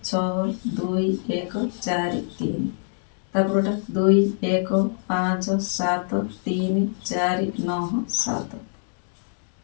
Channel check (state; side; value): silent; right; digital silence